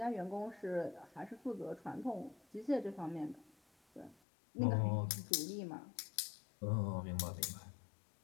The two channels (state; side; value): drops out; right; at 4.2 s